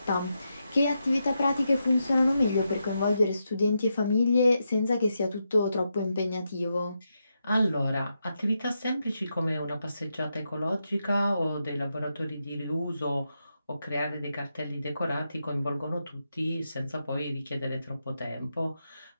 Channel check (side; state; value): both; inverted; correlation -0.85